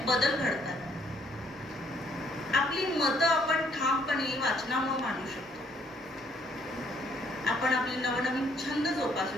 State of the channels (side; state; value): both; normal; correlation 0.66